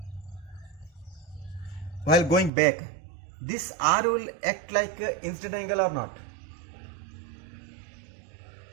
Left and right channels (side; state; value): left; drops out; at 2.5 s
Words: While going back, this R will act like incident angle or not?